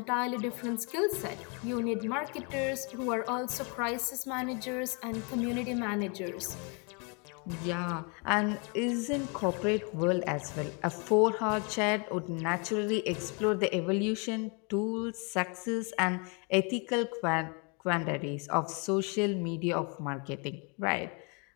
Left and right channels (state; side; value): quieter; right; 34.3 dB